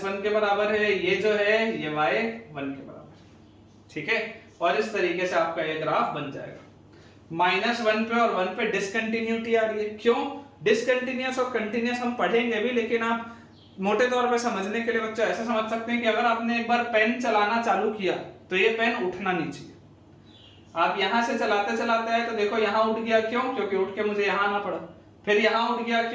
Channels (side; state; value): both; identical; correlation 1.00